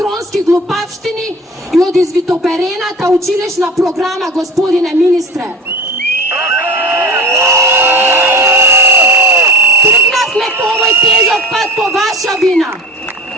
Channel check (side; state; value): both; normal; correlation 0.34